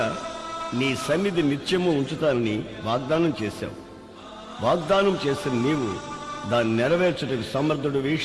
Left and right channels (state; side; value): identical; both; correlation 1.00